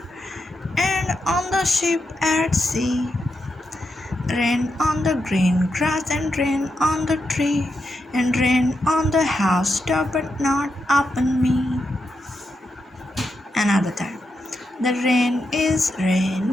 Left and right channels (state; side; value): normal; both; correlation 0.85